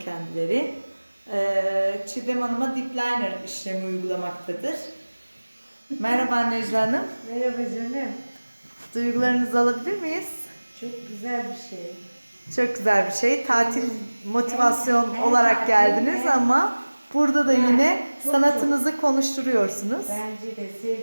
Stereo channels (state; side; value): inverted; both; correlation -1.00